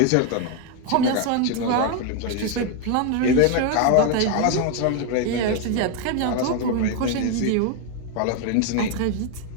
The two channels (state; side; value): different; both; correlation 0.01